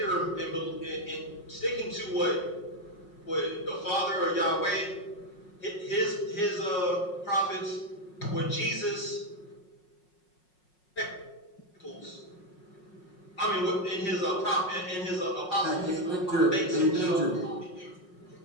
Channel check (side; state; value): right; late; 5.5 ms